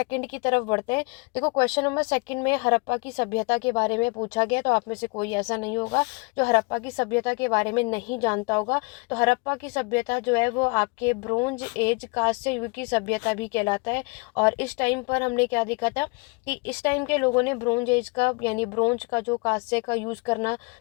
की तरफ बढ़ते हैं। देखो क्वेश्चन नंबर सेकंड में हड़प्पा की सभ्यता के बारे में पूछा गया, तो आप में से कोई ऐसा नहीं होगा जो हड़प्पा की सभ्यता के बारे में नहीं जानता होगा। तो हड़प्पा की सभ्यता जो है वो आपके ब्रोंज एज, कांस्य युग की सभ्यता भी कहलाता है। और इस टाइम पर हमने क्या देखा था कि इस टाइम के लोगों ने ब्रोंज एज का, यानी ब्रोंज का जो कांस्य का यूज़ करना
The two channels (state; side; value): quieter; right; 29.9 dB